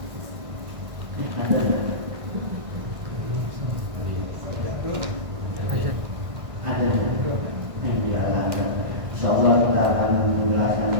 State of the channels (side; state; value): left; late; 1.6 ms